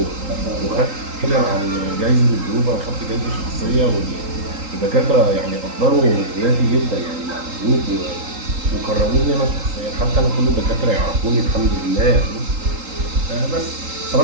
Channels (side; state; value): left; late; 3.8 ms